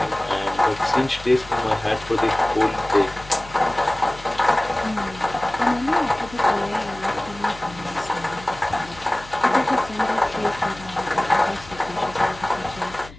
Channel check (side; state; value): left; noise; hum, 18 dB below the sound